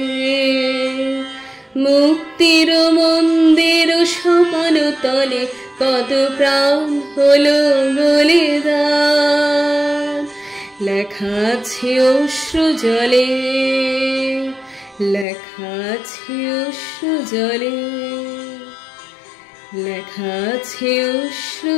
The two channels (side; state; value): right; drops out; at 15.2 s